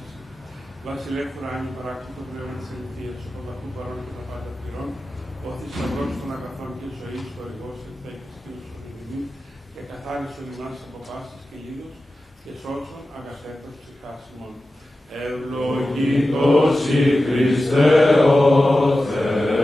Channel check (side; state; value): both; normal; correlation 0.94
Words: σου. Βασιλεύ ουράνιου παράκτητο πνεύμα της αληθείας, ο πανταχού παρών και τα πάντα πληρών, ο θησαυρός των αγαθών και ζωής, ο οργός ενθέκης και ουσιοδημιμή, και καθάρισον ημάς από πάσης και λίδος, και σώσον αγαθέτως ψυχάς ημών. Ευλογητός η Χριστέ ο